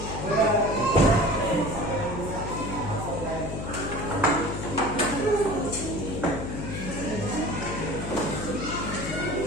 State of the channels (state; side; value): noise; left; hum, 5 dB below the sound